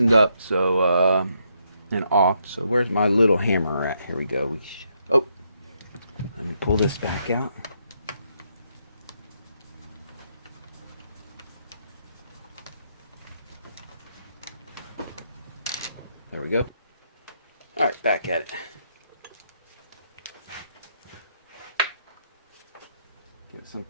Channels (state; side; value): inverted; both; correlation -0.77